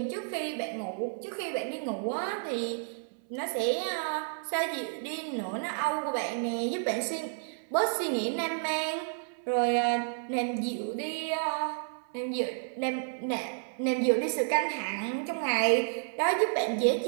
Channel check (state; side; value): silent; left; 57 dB below the other